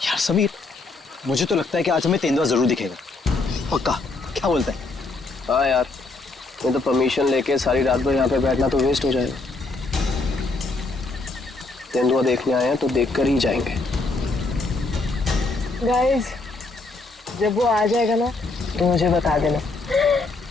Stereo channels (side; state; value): right; quieter; 3.5 dB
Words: यार समीर, मुझे तो लगता है कि आज हमें तेंदुआ जरूर दिखेगा। पक्का? क्या बोलता है? हाँ यार, मैं तो परमिशन लेके सारी रात भर यहाँ पे बैठना तो वेस्ट हो जाएगा। तेंदुआ देखने आए हैं तो देखकर ही जाएंगे। गाइस, जब वो आ जाएगा ना तो मुझे बता देना।